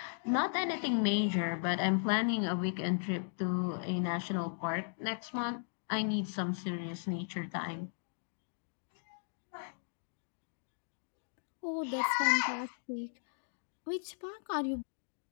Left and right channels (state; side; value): silent; right; digital silence